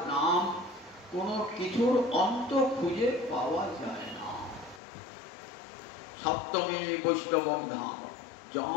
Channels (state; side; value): drops out; right; at 4.8 s